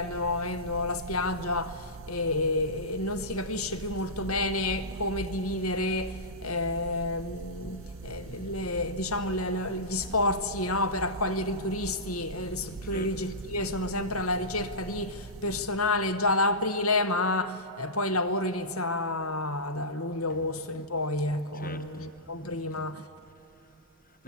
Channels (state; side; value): normal; both; correlation -0.17